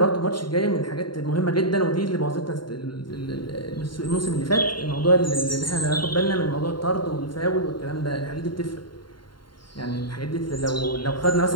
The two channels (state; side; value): late; right; 0.72 ms